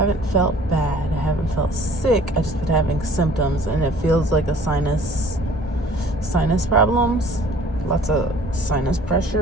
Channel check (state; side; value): normal; both; correlation 0.52